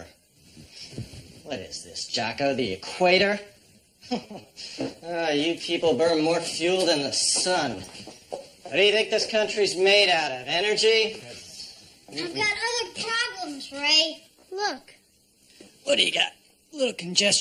What is this, Jocko? The equator? You people burn more fuel than the sun. What do you think this country's made out of? Energy? I've got other problems, Ray. Look, What do you got? Little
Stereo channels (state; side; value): identical; both; correlation 1.00